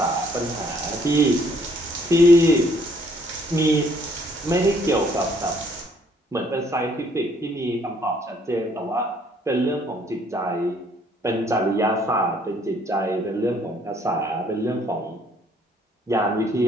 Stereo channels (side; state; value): both; normal; correlation 0.64